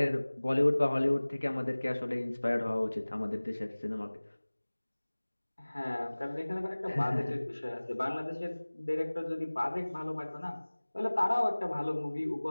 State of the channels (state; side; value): inverted; both; correlation -1.00